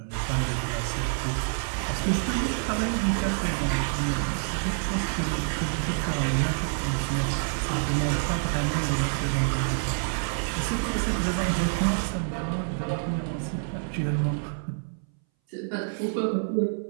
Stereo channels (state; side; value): silent; left; 60 dB below the other